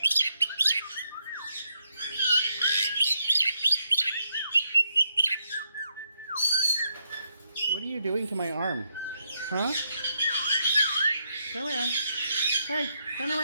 What are you doing to my arm? Huh? Turn around. Hey, turn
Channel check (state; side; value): inverted; both; correlation -0.79